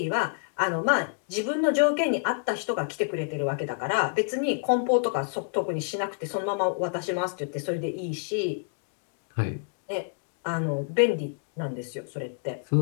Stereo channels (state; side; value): silent; right; digital silence